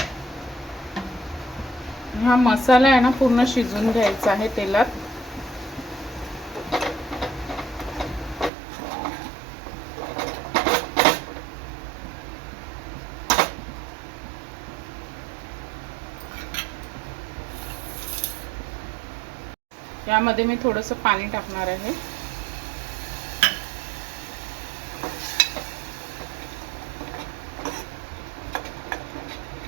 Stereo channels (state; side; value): drops out; left; at 8.5 s